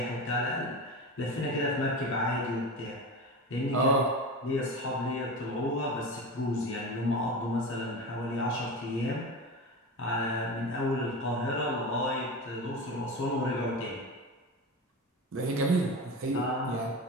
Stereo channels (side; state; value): both; normal; correlation 0.26